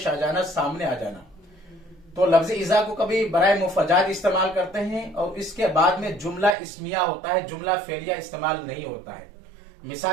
आ जाना, सामने आ जाना। तो लफ्ज इज़ा को कभी बराए मुफजात इस्तेमाल करते हैं और इसके बाद में जुमला इस्मिया होता है, जुमला फेलिया इस्तेमाल नहीं होता है।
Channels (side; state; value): left; drops out; at 6.6 s